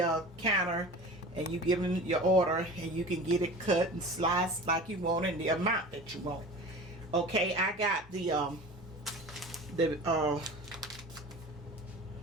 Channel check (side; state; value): both; normal; correlation 0.37